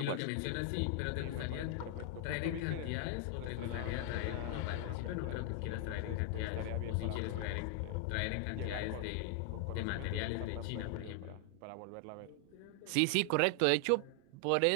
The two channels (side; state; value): both; different; correlation 0.00